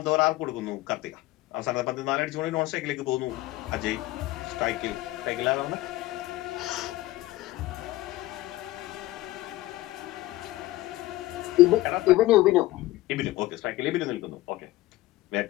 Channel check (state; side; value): quieter; right; 17.7 dB